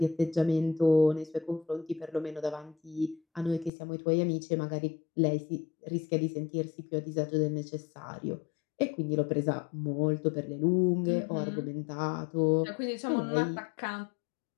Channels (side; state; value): right; drops out; at 3.7 s